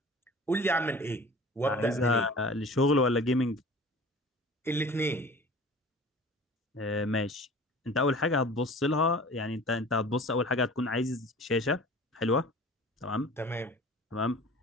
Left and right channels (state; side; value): normal; both; correlation 0.43